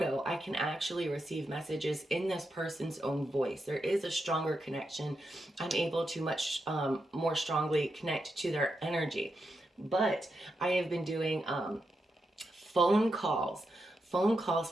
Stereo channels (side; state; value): both; normal; correlation 0.86